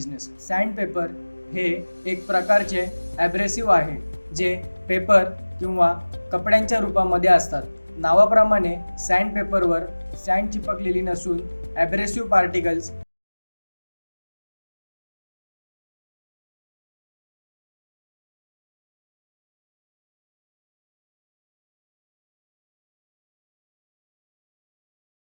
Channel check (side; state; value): both; inverted; correlation -1.00